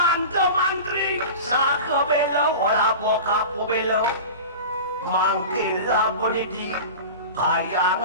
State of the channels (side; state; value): both; inverted; correlation -0.32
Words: mantri sakabelo wala bokapu belo mangkila bonidi